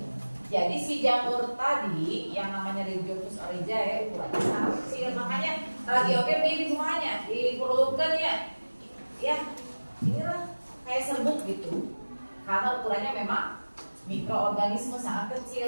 Jadi si jamur tadi yang namanya Rhizopus oryzae ukurannya sangat kecil, makanya lagi oke di semuanya diperlukan ya. Ya, inilah kayak serbuk gitu. Karena ukurannya memang mikroorganisme sangat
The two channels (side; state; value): both; inverted; correlation -1.00